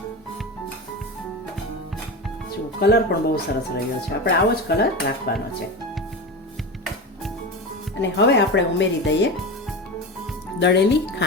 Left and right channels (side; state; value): both; normal; correlation 0.24